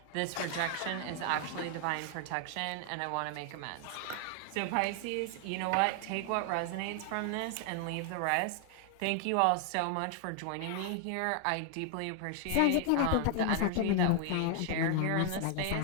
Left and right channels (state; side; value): different; both; correlation 0.00